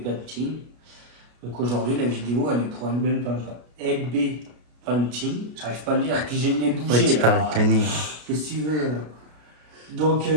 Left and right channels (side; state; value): left; late; 33 ms